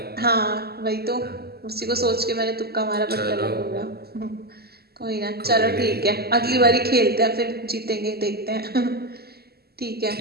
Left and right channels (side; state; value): left; late; 0.46 ms